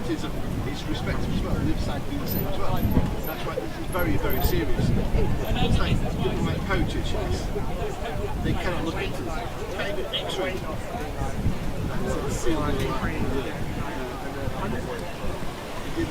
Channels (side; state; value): both; identical; correlation 1.00